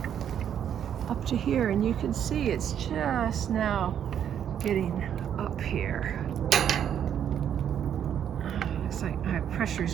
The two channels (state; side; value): quieter; left; 9.2 dB